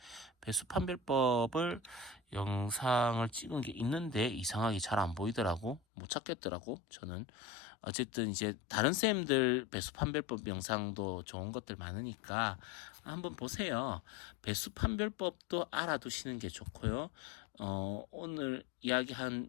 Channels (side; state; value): right; drops out; at 5.8 s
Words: 배수 판별법을 영상을 찍은 게 있는데 이상하게 잘 안 보이더라고. 못 찾겠더라고. 저는 어쨌든 이제 다른 쌤들 배수 판별법 영상도 좋은 것들 많으니까 한번 보세요. 배수 판별법도 알아두시는 게 좋고요. 오늘